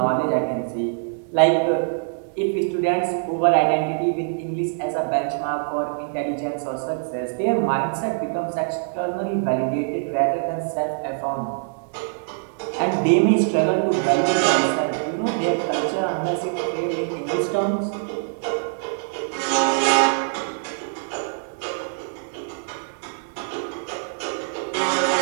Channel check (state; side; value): silent; left; digital silence